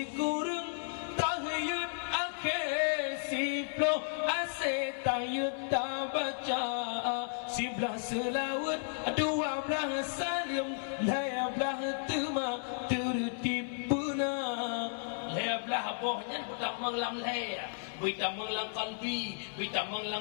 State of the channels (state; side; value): silent; right; 55 dB below the other